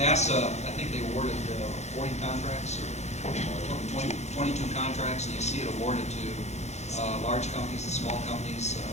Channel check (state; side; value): late; right; 0.32 ms